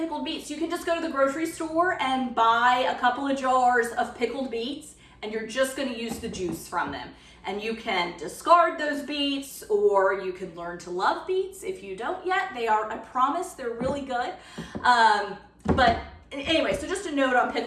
beets. You can just go to the grocery store and buy a couple of jars of pickled beets, and you're just going to use the juice from them. And you can discard those beets, or you can learn to love beets. If you don't yet, they are, I promise, they're really good. But anyway, so just a note on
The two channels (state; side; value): identical; both; correlation 1.00